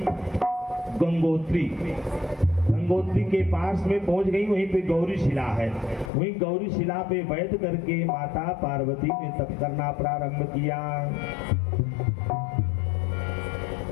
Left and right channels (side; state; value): right; drops out; at 6.1 s